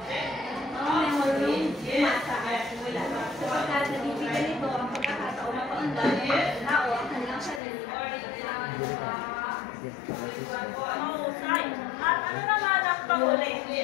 ang memorong masa at simula. Sapagkat nabibigyan nito ang pagkakataon na paundan ng tao ang kanilang sarili Mahusay. At ano naman ang panguli?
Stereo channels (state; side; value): drops out; right; at 7.6 s